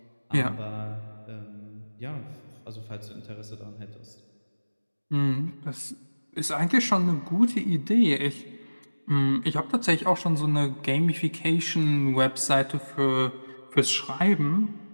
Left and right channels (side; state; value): both; inverted; correlation -1.00